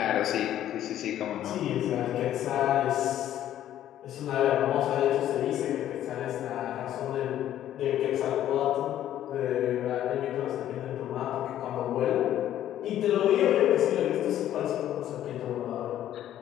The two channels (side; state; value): right; quieter; 11.8 dB